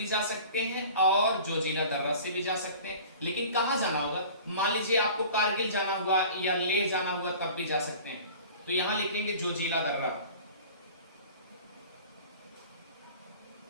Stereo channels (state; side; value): inverted; both; correlation -0.43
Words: जा सकते हैं और जोजिला दर्रा से भी जा सकते हैं, लेकिन कहां जाना होगा? मान लीजिए आपको कारगिल जाना हुआ या ले जाना हुआ, तब भी जा सकते हैं। तो यहां लिखेंगे जोजिला दर्रा।